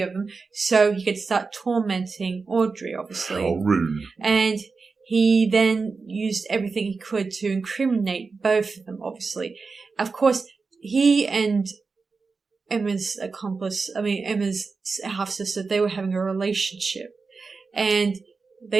of them so he could start tormenting Audrey, obviously. How rude. And he then used everything he could to incriminate both of them, obviously. Of course, he and Emma's half-sister, they were having a relationship. And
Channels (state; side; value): quieter; left; 4.5 dB